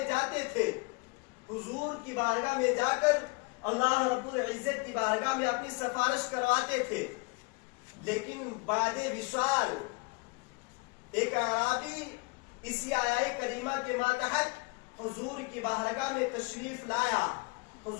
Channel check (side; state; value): right; quieter; 28.3 dB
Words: جاتے تھے، حضور کی بارگاہ میں جا کر اللہ رب العزت کی بارگاہ میں اپنی سفارش کرواتے تھے. لیکن بعد وصال ایک اعرابی اسی آیہ کریمہ کے ماتحت حضور کی بارگاہ میں تشریف لایا،